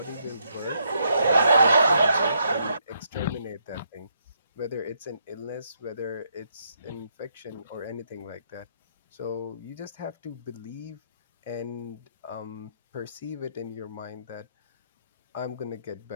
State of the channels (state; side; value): inverted; both; correlation -0.75